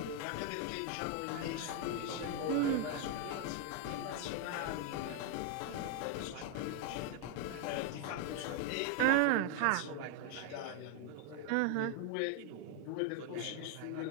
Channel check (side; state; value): both; different; correlation 0.01